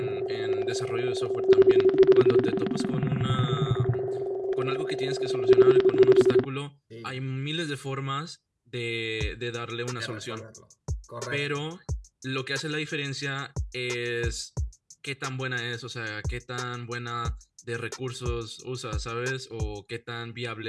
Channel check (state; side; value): identical; both; correlation 1.00